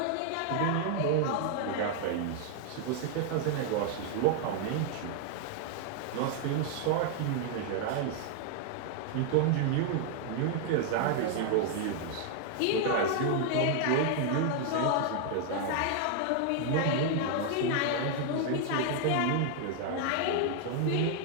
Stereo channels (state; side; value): different; both; correlation 0.00